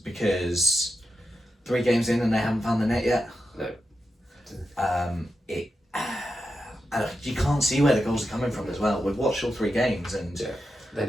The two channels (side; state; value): both; normal; correlation 0.88